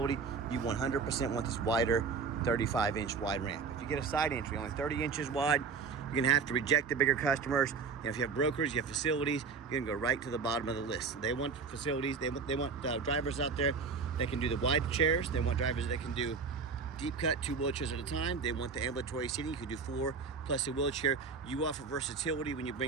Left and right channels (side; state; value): left; quieter; 5.1 dB